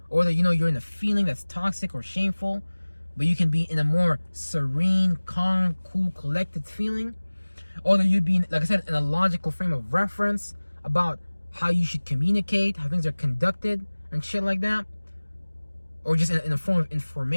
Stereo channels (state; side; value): inverted; both; correlation -1.00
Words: Or that, you're in a feeling that's toxic or shameful, but you can be in a more serene, calm, cool, collected feeling. Or that you'd be, like I said, in a logical frame of reference about how you should communicate, how things are conducted, and shit like that. Or just in a form of